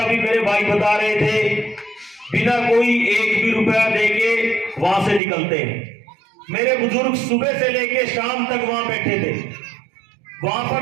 मेरे भाई बता रहे थे बिना कोई एक भी रुपया देके वहां से निकलते हैं। मेरे बुजुर्ग सुबह से लेके शाम तक वहां बैठे थे, वहां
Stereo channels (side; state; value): left; drops out; at 5.2 s